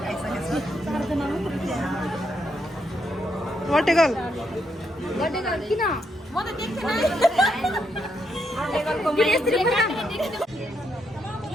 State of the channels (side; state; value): both; normal; correlation 0.78